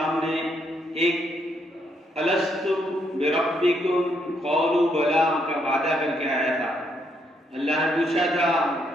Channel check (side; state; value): both; normal; correlation 0.75